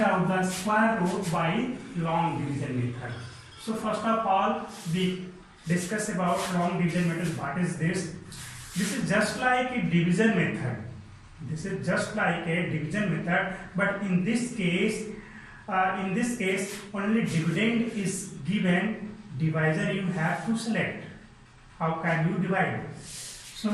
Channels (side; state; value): both; identical; correlation 1.00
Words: out the square root by long division method. So first of all, we discuss about long division method. What is this? This is just like a division method. This is just like a division method, but in this case only dividend is given. Divisor you have to select. How can you divide?